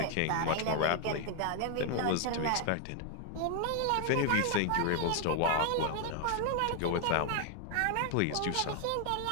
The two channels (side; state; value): both; different; correlation 0.00